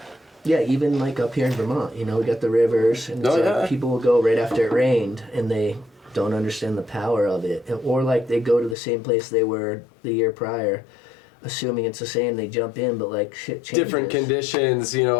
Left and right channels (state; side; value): drops out; right; at 8.8 s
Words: yeah, even like up here in Vermont, we got the rivers, and it's Oh, like yeah. people will go right after it rained, and they don't understand the power of it, or like they go to the same place they were the year prior, assuming it's the same. They jump in, but like shit changes. Different conditions. Yeah,